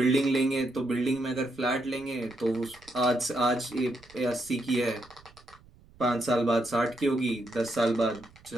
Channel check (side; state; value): right; noise; rumble, 26 dB below the sound